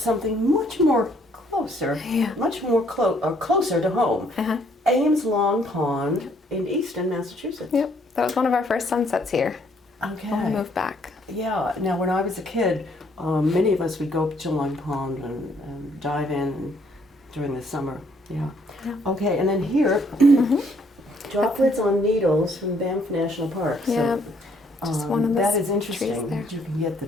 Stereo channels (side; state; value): both; normal; correlation 0.66